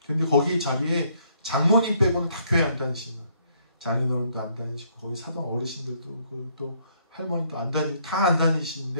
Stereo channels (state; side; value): inverted; both; correlation -0.68